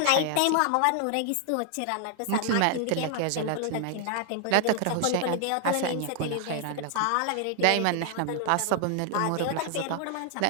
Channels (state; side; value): different; both; correlation 0.00